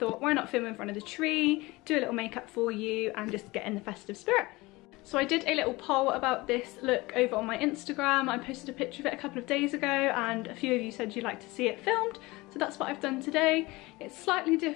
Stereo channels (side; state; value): right; quieter; 21.9 dB